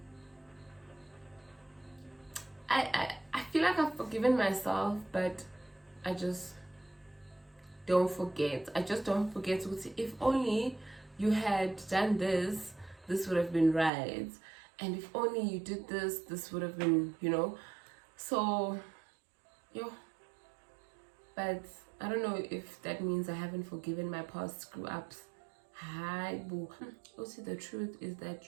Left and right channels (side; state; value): left; drops out; at 13.9 s